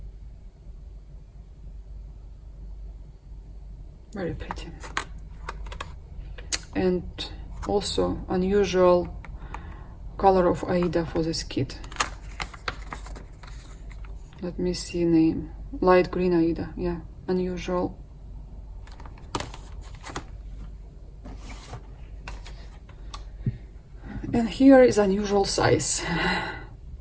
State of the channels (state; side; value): identical; both; correlation 1.00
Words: Very pretty. And also unusual color of Aida for this kit. Let me see name. Light green Aida, yeah, unusual. And here is unusual size,